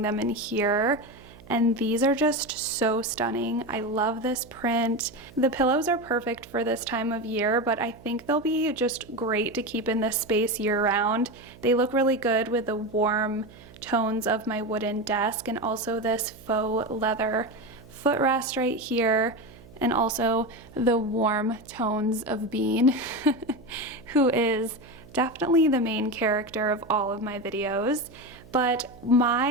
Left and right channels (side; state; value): right; noise; hum, 21 dB below the sound